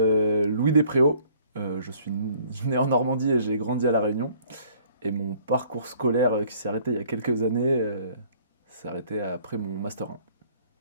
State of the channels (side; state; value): both; inverted; correlation -0.58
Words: Louis Despréaux, je suis né en Normandie et j'ai grandi à La Réunion. Et mon parcours scolaire qui s'est arrêté il y a quelques années, s'est arrêté après mon Master 1